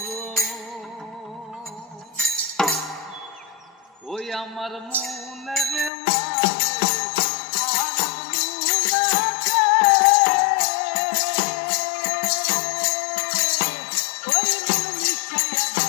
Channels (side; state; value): right; drops out; at 5.9 s